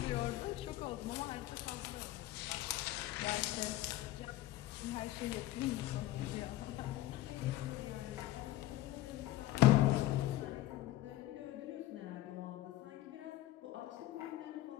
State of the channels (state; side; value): quieter; right; 15.3 dB